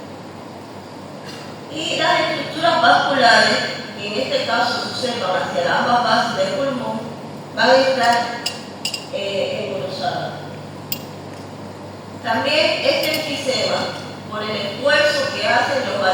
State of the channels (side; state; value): both; identical; correlation 1.00